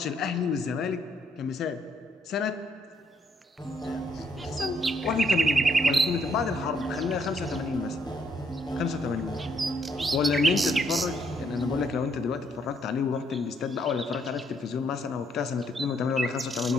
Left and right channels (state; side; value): normal; both; correlation 0.71